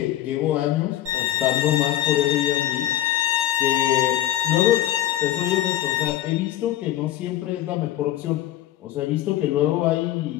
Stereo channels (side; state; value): right; quieter; 13.0 dB